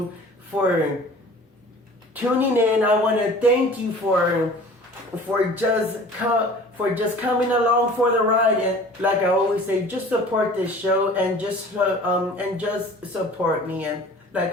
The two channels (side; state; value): both; normal; correlation 0.45